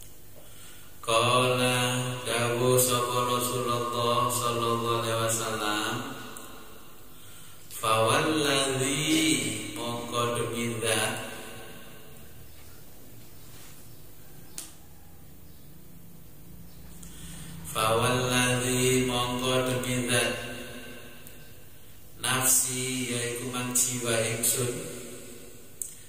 Qala dawu sapa Rasulullah sallallahu alaihi wasallam fawalladzi mongko demi zat nafsi yaiku mang jiwa ingsun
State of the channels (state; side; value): identical; both; correlation 1.00